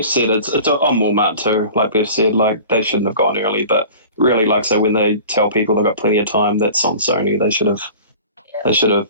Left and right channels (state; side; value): inverted; both; correlation -0.41